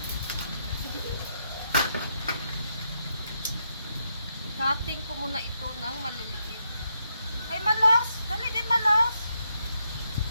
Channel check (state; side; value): inverted; both; correlation -0.79